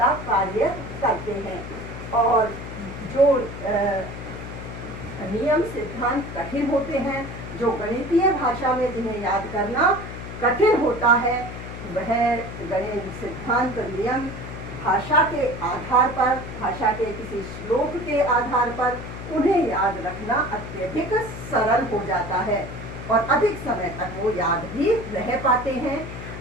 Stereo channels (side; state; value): left; noise; hum, 10 dB below the sound